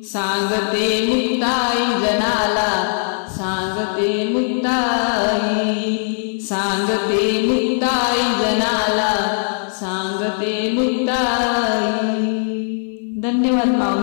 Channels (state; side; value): silent; right; 57 dB below the other